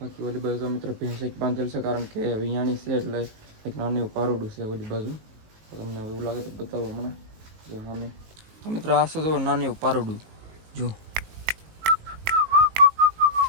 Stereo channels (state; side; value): late; left; 19 ms